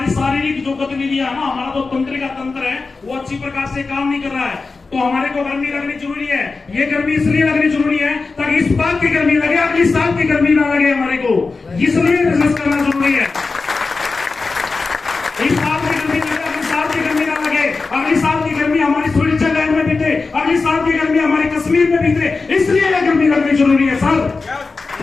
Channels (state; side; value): quieter; right; 4.1 dB